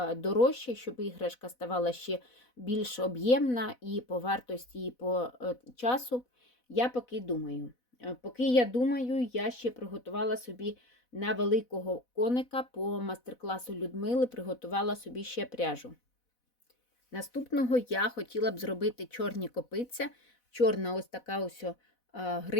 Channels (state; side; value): late; right; 4.1 ms